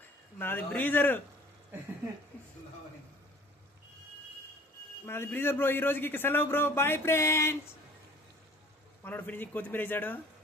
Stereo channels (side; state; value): both; normal; correlation 0.50